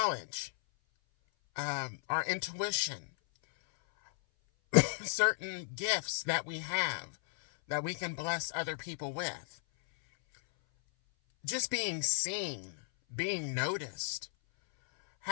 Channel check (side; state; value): right; silent; 55 dB below the other